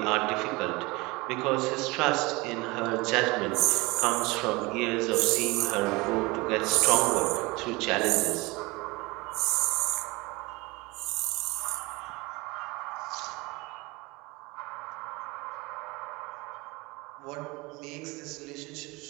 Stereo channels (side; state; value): left; quieter; 23.9 dB